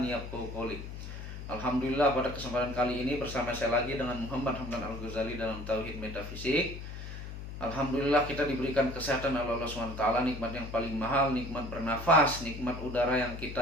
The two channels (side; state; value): left; noise; hum, 9 dB below the sound